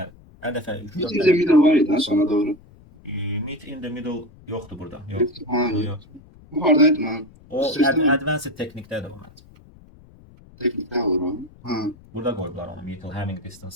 Hər dəfə 3-4 Bir de video var idi sonra doğru. meet in the middle yoxdur burada. Yox. Hayır. Yox. Bu hardaydı lan? O Sistem- advanced teknikdədir bu məncə. Teknikte var o. Ha. Burada qoyublar onu. Mutual having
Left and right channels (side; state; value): left; noise; rumble, 24 dB below the sound